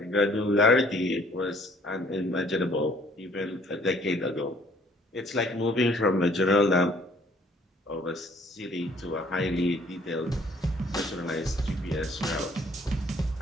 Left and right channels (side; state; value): both; normal; correlation 0.59